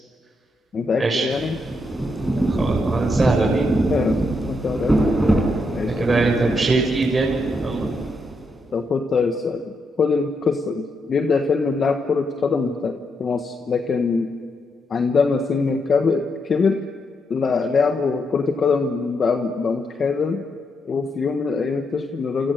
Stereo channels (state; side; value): normal; both; correlation 0.80